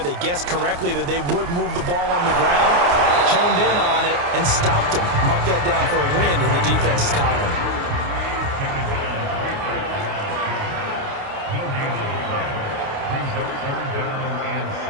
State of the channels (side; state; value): left; late; 29 ms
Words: They guessed correctly that they would move the ball on the ground, honed in on it, and stopped him. Mark that down for a win in the defense's column.